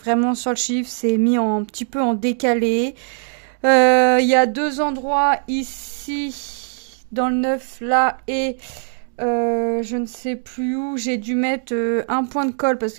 sur le chiffre, c'est mis un petit peu en décalé. Il y a deux endroits ici, dans le neuf là, et je ne sais plus où, j'ai dû mettre un point de colle parce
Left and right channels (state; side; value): silent; left; digital silence